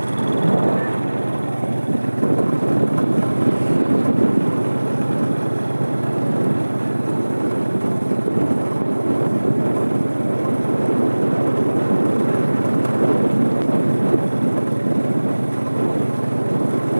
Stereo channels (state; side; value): inverted; both; correlation -1.00